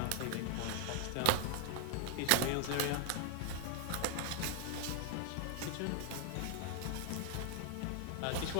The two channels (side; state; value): both; different; correlation 0.00